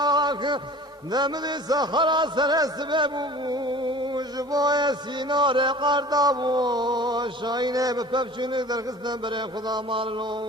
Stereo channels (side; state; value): both; normal; correlation 0.43